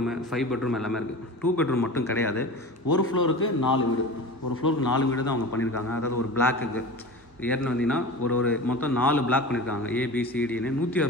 5 பெட்ரூம் எல்லாமே இருக்குது. 2 பெட்ரூம் மட்டும் கிடையாது. ஒரு ஃப்ளோருக்கு 4 வீடு, ஒரு ஃப்ளோருக்கு 4 வீடு தான் அவங்க பண்ணியிருக்காங்க. அதாவது ஒரு பிளாக்குக்கு ஏறின வந்தீங்கன்னா ஒரு மொத்தம் 4 பிளாக் பண்ணியிருக்காங்க. ABCDன்னு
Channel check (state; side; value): normal; both; correlation 0.33